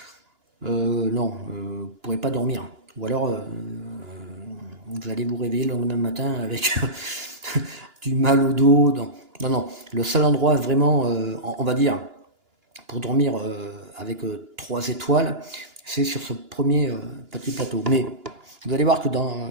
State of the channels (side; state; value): left; late; 2.9 ms